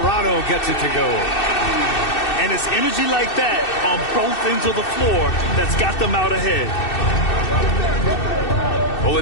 gets it to go. And it's energy like that on both ends of the floor that's got them out ahead.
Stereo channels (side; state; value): right; late; 2.6 ms